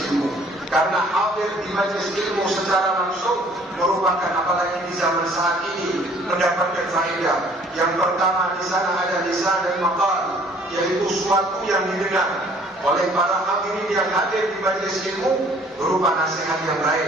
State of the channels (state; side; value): normal; both; correlation 0.57